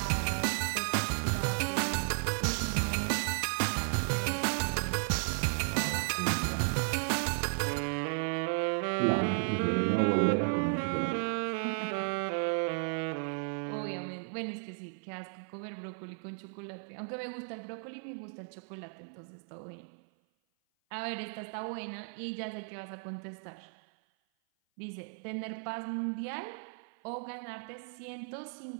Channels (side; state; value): left; silent; 55 dB below the other